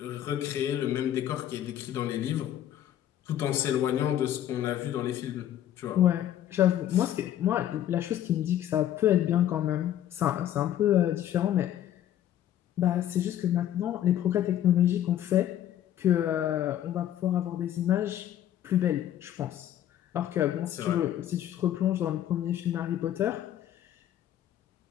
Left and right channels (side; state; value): right; quieter; 11.6 dB